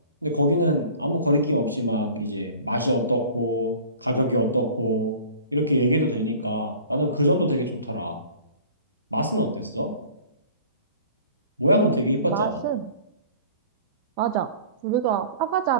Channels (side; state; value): both; inverted; correlation -0.46